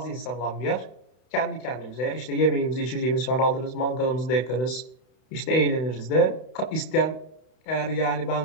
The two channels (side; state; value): right; late; 32 ms